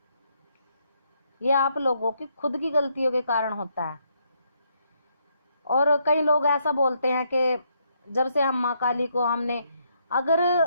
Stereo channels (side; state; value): both; inverted; correlation -0.74